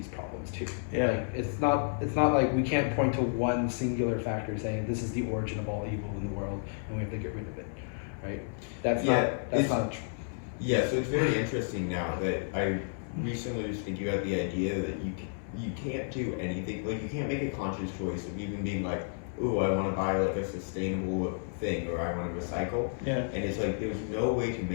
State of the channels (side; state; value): right; silent; 57 dB below the other